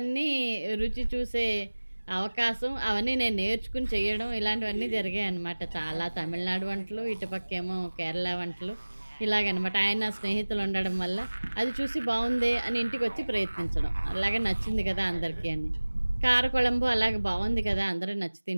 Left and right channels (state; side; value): inverted; both; correlation -1.00